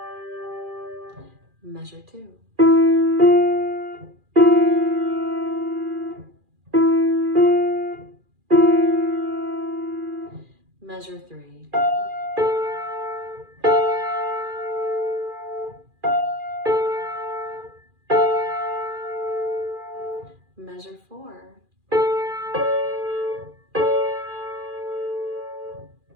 Measure 2. Measure 3. Measure 4.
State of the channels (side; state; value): left; late; 2.4 ms